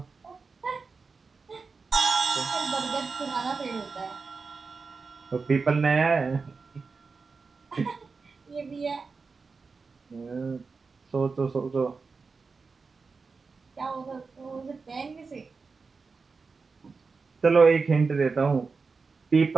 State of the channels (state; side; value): quieter; left; 4.6 dB